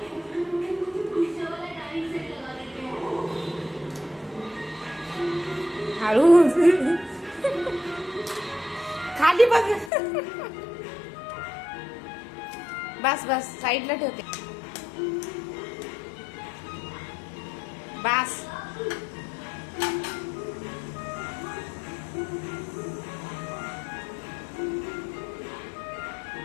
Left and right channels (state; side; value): drops out; right; at 9.9 s